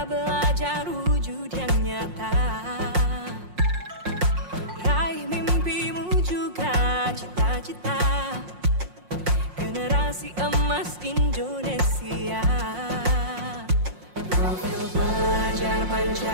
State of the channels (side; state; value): left; late; 5.6 ms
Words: belajar wujud yang nyata, raih mimpimu juga cita-cita, generasi emas Indonesia. Profil pelajar